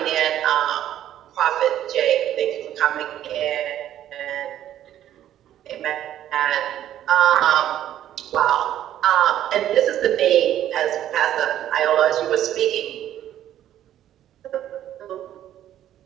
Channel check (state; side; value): quieter; left; 11.7 dB